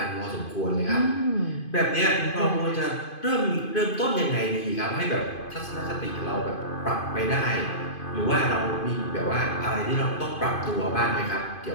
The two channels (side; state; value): right; late; 2.5 ms